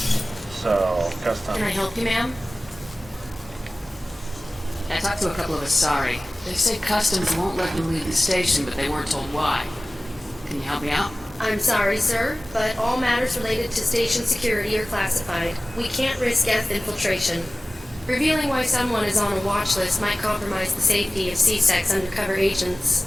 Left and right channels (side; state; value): both; normal; correlation 0.96